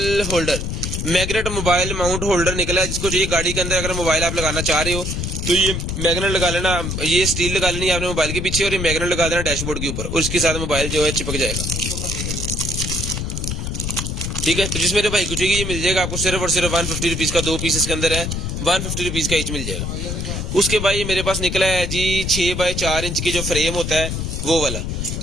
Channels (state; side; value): noise; left; rumble, 3 dB below the sound